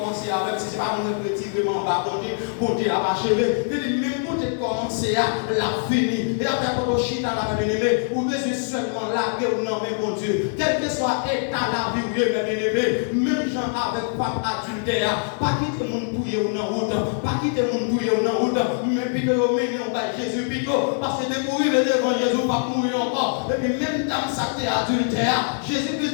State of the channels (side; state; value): right; silent; digital silence